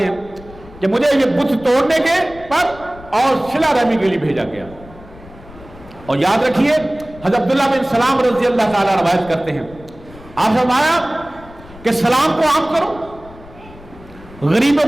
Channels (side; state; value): left; noise; rumble, 20 dB below the sound